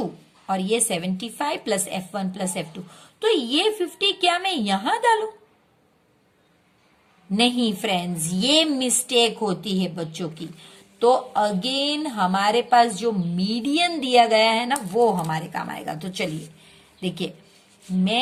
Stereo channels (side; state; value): both; identical; correlation 1.00